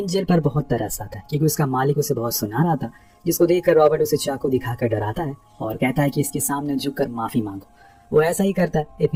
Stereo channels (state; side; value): identical; both; correlation 1.00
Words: पर बहुत तरस आता है, क्योंकि उसका मालिक उसे बहुत सुना रहा था। जिसको देखकर रॉबर्ट उसे चाकू दिखाकर डराता है और कहता है कि इसके सामने झुककर माफी मांगो। वो ऐसा ही करता है।